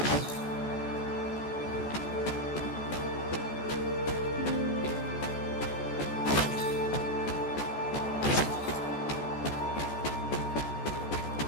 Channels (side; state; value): right; late; 14 ms